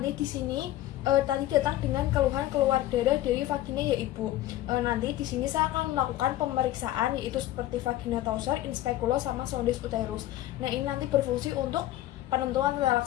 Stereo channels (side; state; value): right; quieter; 14.4 dB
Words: di sini tadi datang dengan keluhan keluar darah dari vagina ya Ibu. Nanti di sini saya akan melakukan pemeriksaan yaitu seperti vagina torser, inspekulo sama sondes uterus. Nah, ini nanti berfungsi untuk penentuan